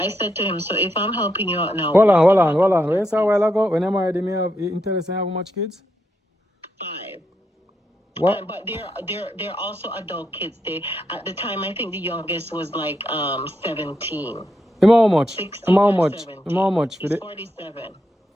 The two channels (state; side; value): normal; both; correlation 0.82